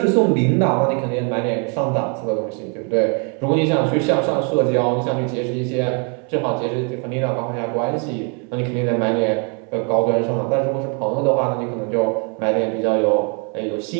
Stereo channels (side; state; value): left; quieter; 37.8 dB